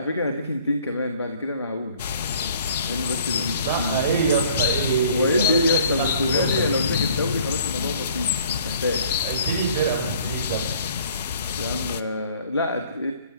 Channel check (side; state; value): both; inverted; correlation -0.55